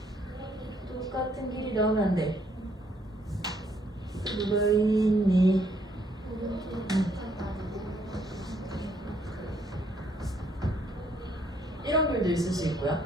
똑같은 길이 나오면 안 돼. 누가 있니? 이런 길도 있을 수 있고요.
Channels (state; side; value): normal; both; correlation 0.69